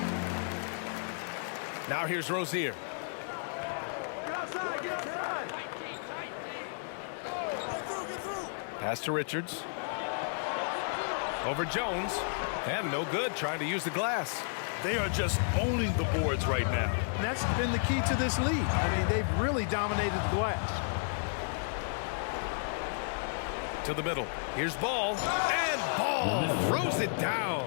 Now here's Rozier. Get outside, get outside. Get through. Pass to Richards. Over Jones. And no good, trying to use the glass. They are just owning the boards right now. And that's been the key to this league. I mean, they've really dominated the glass. To the middle. Here's Ball. And Ball throws it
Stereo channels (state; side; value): silent; right; 56 dB below the other